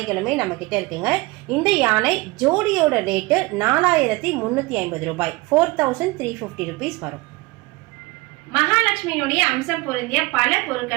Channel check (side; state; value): left; quieter; 22.5 dB